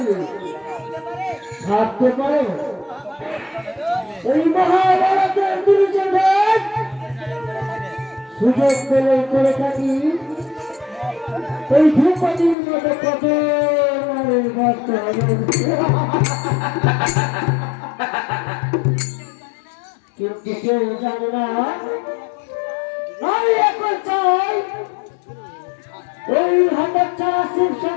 ভাবতে পারো এই মহাভারতের দুর্যোধন সুযোগ পেলে করে থাকি এই ধ্রুপদীর মতো কত নারীর ভক্ত হবে। কিন্তু কেউ জানে না আমি এখন চাই ওই হতচ্ছাড়া শিব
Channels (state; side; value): drops out; right; at 12.6 s